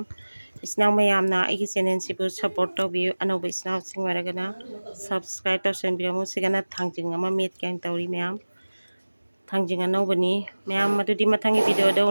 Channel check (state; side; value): inverted; both; correlation -1.00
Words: ꯏꯆꯤꯟꯅꯥꯎ ꯃꯌꯥꯝꯅ ꯑꯩꯒꯤ ꯆꯦꯅꯦꯜꯁꯤꯕꯨ ꯁꯞꯄꯣꯔꯠ ꯇꯧꯕꯤꯌꯨ ꯑꯅꯧꯕ ꯏꯆꯤꯟꯅꯥꯎꯁꯤꯡ ꯑꯣꯏꯔꯒꯅ ꯁꯕꯁꯀ꯭ꯔꯥꯏꯕ ꯇꯧꯁꯟꯕꯤꯔꯝꯃꯨ ꯁꯤꯒꯅ ꯊꯥꯡꯖꯤꯡ ꯑꯃ ꯃꯦꯠꯀꯦꯅ ꯇꯧꯔꯤ ꯃꯌꯥꯝ ꯊꯥꯡꯖꯤꯡ ꯑꯅꯧꯕꯅꯤ ꯃꯌꯥꯝ ꯑꯗꯨꯗꯤ ꯃꯊꯪꯒꯤ ꯚꯤꯗꯤꯑꯣꯗ